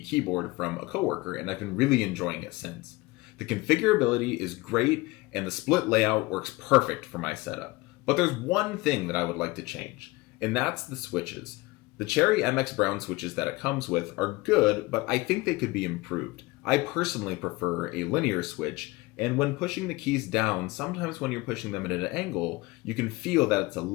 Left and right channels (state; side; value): quieter; right; 21.8 dB